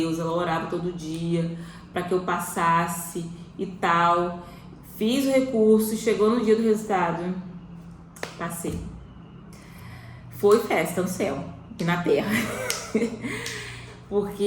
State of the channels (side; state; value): both; identical; correlation 1.00